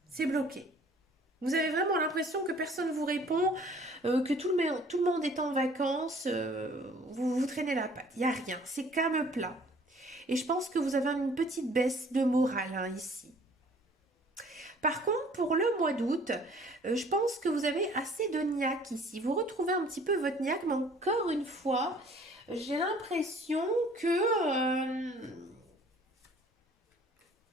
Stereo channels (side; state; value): both; normal; correlation 0.54